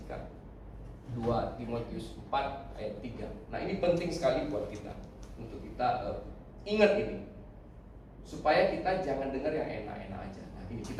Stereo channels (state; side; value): identical; both; correlation 1.00